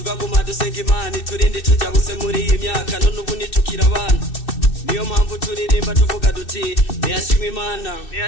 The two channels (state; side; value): late; right; 2.6 ms